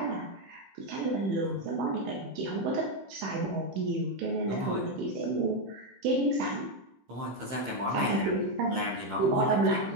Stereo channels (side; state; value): left; late; 15 ms